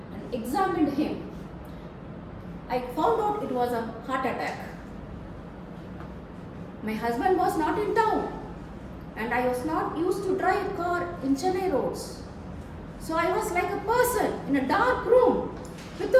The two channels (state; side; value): identical; both; correlation 1.00